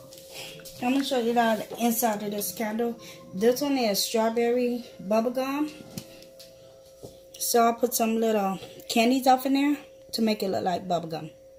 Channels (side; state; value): both; identical; correlation 1.00